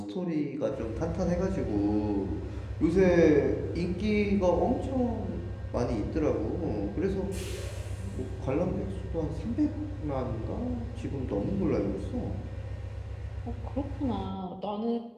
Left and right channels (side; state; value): both; identical; correlation 1.00